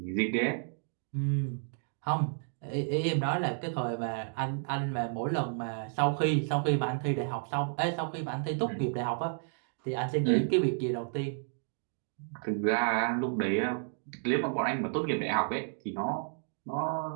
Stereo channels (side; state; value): left; silent; digital silence